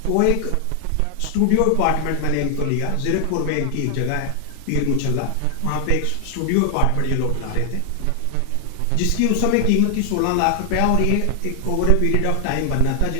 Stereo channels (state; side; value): different; both; correlation 0.00